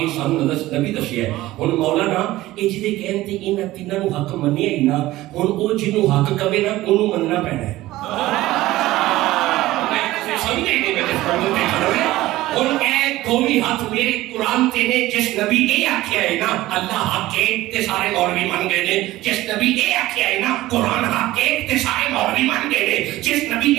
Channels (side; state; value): left; quieter; 16.9 dB